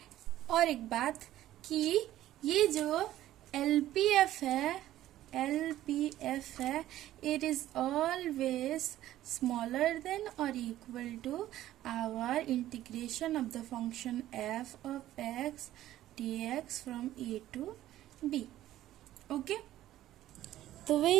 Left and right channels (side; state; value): left; quieter; 13.8 dB